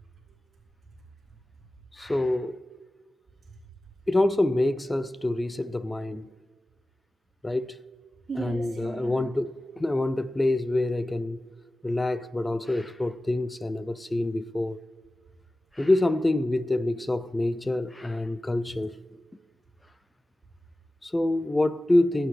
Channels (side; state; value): both; normal; correlation 0.96